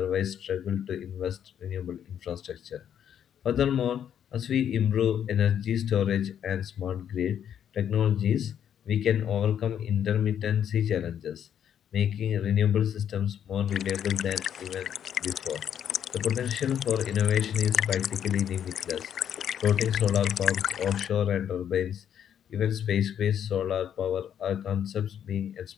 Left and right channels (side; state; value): right; quieter; 9.2 dB